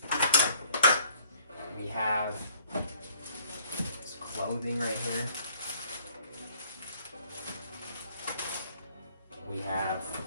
We have his clothing right here. We have,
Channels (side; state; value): both; inverted; correlation -0.60